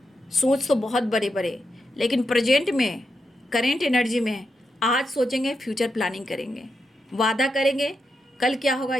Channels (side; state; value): both; normal; correlation 0.85